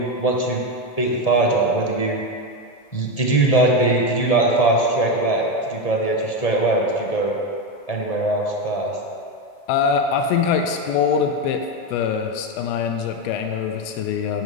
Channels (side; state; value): right; late; 1.8 ms